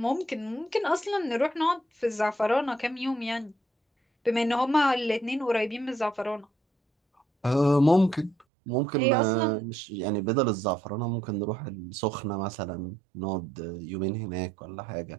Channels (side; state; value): left; drops out; at 8.5 s